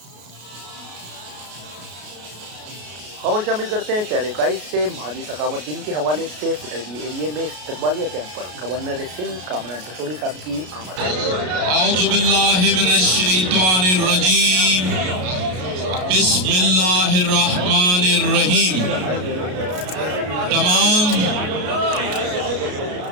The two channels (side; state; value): left; late; 33 ms